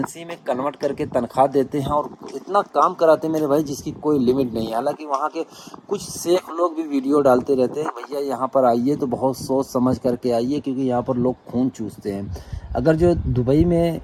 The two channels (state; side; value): identical; both; correlation 1.00